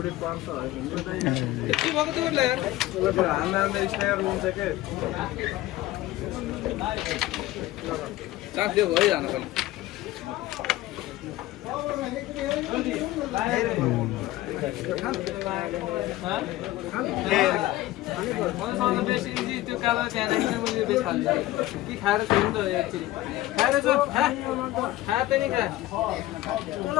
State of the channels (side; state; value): right; quieter; 16.3 dB